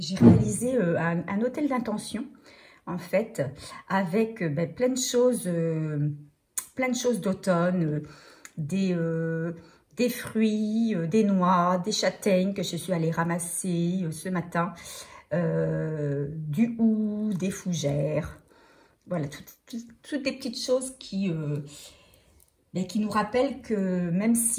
réalisé un hôtel d'intention, en fait, avec plein de choses d'automne, des fruits, des noix, des châtaignes que je suis allée ramasser ce matin, du hou, des fougères, voilà, toutes des petites choses qui nous rappellent que même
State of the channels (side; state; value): both; identical; correlation 1.00